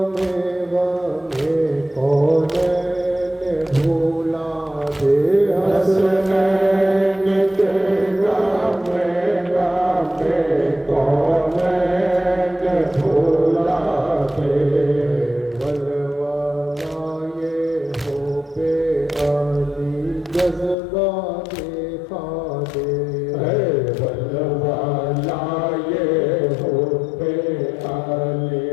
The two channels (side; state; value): right; drops out; at 20.8 s